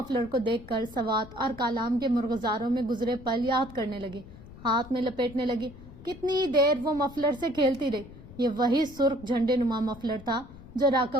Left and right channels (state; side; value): noise; left; rumble, 18 dB below the sound